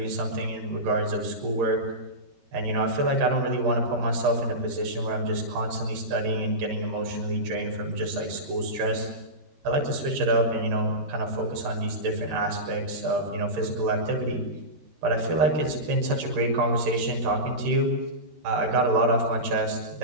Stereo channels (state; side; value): late; left; 13 ms